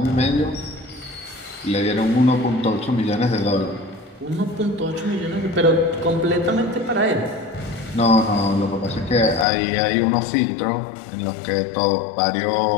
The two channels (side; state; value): right; drops out; at 9.5 s